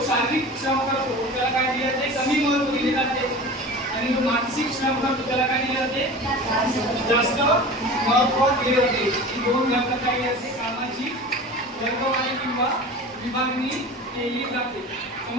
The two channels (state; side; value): normal; both; correlation 0.35